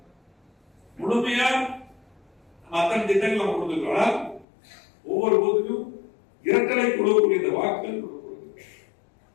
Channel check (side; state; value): right; drops out; at 4.5 s